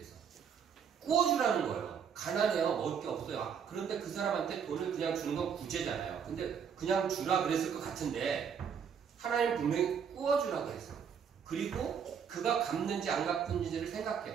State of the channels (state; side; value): quieter; left; 7.2 dB